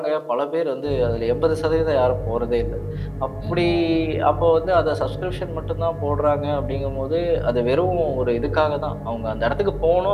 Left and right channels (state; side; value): identical; both; correlation 1.00